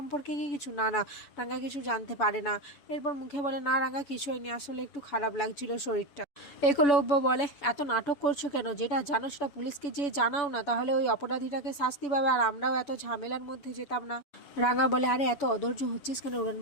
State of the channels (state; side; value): late; right; 7.0 ms